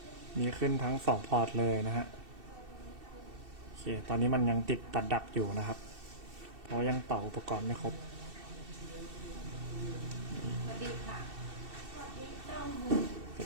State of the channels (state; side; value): late; left; 2.7 ms